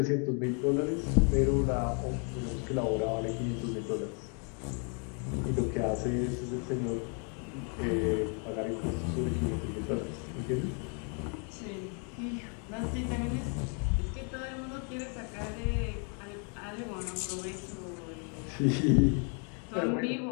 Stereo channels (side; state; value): right; quieter; 39.6 dB